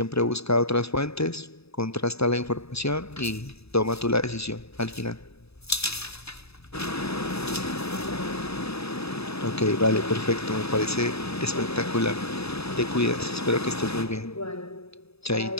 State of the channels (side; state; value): right; late; 0.78 ms